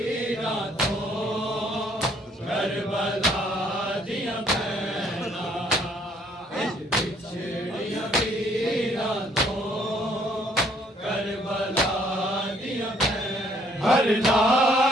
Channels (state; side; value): normal; both; correlation 0.65